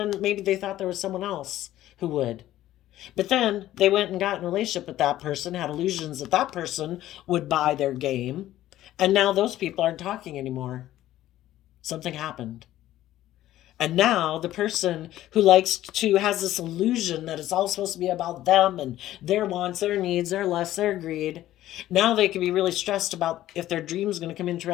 maybe they thought there was someone else who would. But then they went and got in a relationship with that person, had illusions that that person would buy their game. And now those people aren't talking anymore. Something happened. And now the person who likes to has this illusion that it's all supposed to be about them and their wants, their needs, their lusts, their greed. Now they can be really stressed about if their dream's going to come into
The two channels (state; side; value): quieter; right; 13.9 dB